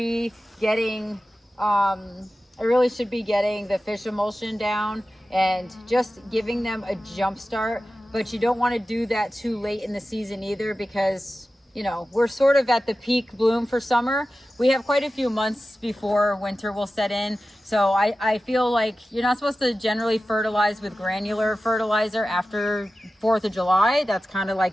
getting, the fish emulsion down and just giving them a jump start. But you don't want to do that too late in the season either, because, you know, we're sort of at the peak bloom for summer. We have quite a few months before winter will set in. So I feel like you're not supposed to generally fertilize with granular fertilizer after 4th of July. That's kind of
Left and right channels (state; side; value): normal; both; correlation 0.94